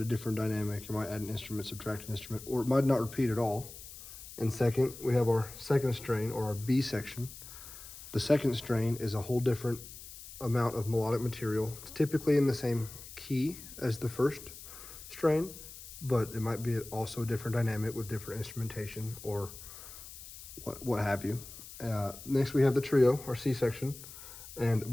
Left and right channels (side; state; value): left; noise; hiss, 14 dB below the sound